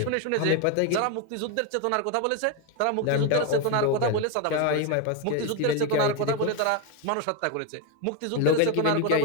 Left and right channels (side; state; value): both; different; correlation 0.02